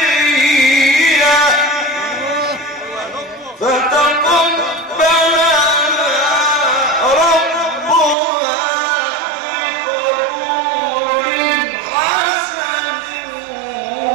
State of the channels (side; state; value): left; drops out; at 8.2 s